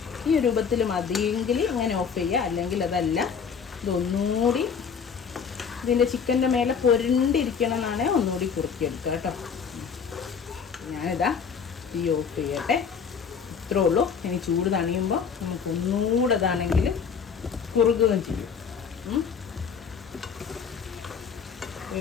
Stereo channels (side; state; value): right; quieter; 6.4 dB